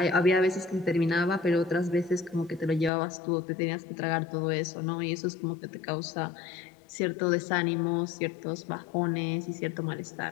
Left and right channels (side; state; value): right; drops out; at 2.9 s